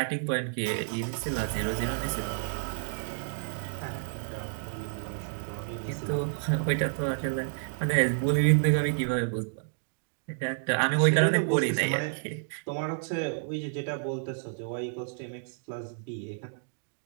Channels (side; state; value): left; silent; digital silence